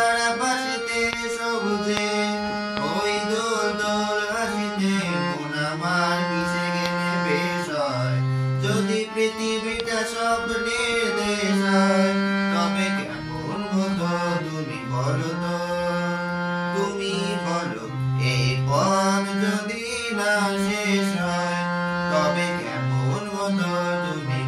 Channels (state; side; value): identical; both; correlation 1.00